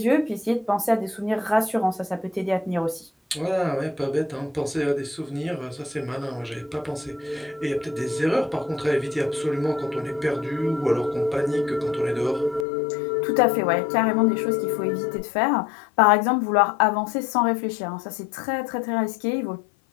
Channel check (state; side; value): drops out; right; at 12.7 s